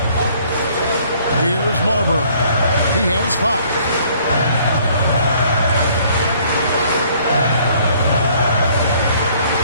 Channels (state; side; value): inverted; both; correlation -0.60